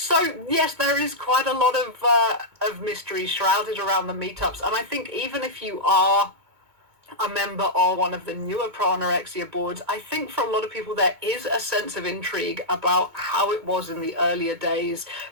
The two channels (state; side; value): late; left; 2.2 ms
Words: yes, there is quite a lot of mystery shrouded around the meetups, and I think even if you are a member of one of the newer pro-anorexia boards, I think for a lot of people there is a sense of intrigue about how it was in the earlier days,